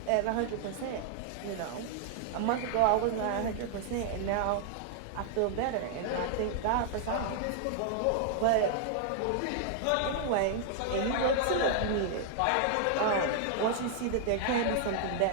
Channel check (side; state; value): both; different; correlation 0.00